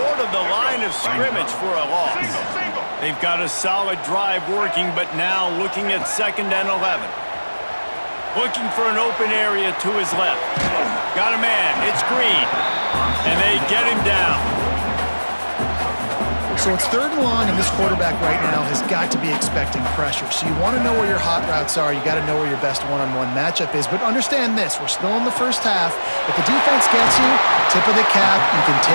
of the line of scrimmage for a loss. They've got a solid drive working, but now looking at 2nd and 11. Looking for an open area to his left. Got a man. It's Green. And they get him down. So it's 3rd and long, and this quarterback right now has got to be expecting pressure. So you want to know where your hot routes are. You got to know where your best one-on-one matchup is. But understand this, we're still in the first half. If the defense gets you, tip of the cap, you can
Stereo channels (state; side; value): inverted; both; correlation -1.00